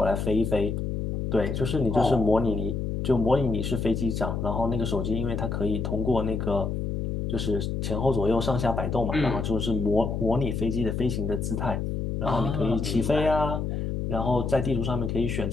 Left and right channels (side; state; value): left; noise; hum, 2 dB below the sound